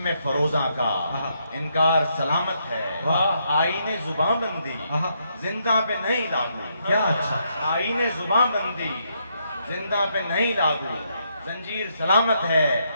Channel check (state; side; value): inverted; both; correlation -0.76